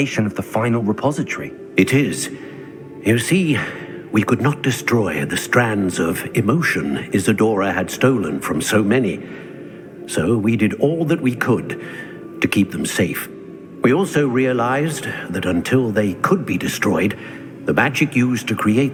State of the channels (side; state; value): both; identical; correlation 1.00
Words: of the final repository? It is. You see, we could not destroy the strands of emotion Isadora had stolen from so many. So we did all that we could to keep them safe. We also realized that until they could be destroyed, the magic used to